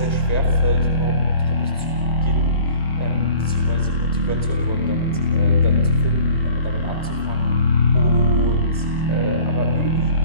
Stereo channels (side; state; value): both; inverted; correlation -0.48